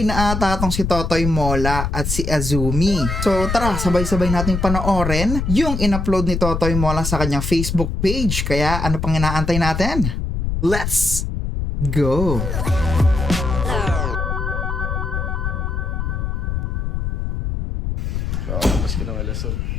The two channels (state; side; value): noise; left; rumble, 2 dB below the sound